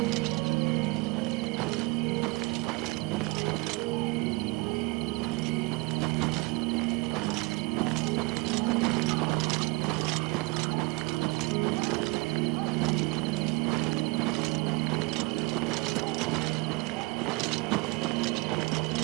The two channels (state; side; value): quieter; left; 24.3 dB